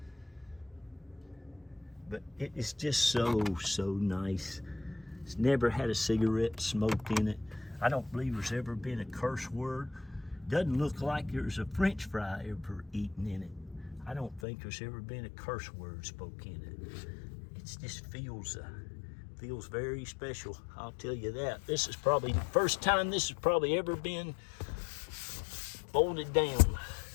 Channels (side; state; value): right; drops out; at 14.4 s